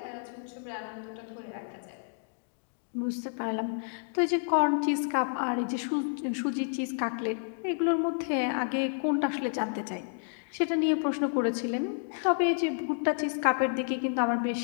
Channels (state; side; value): silent; right; digital silence